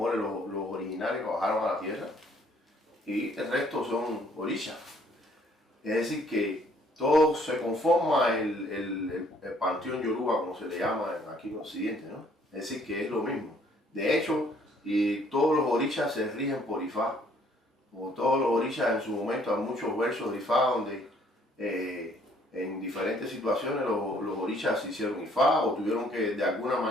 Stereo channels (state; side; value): normal; both; correlation 0.63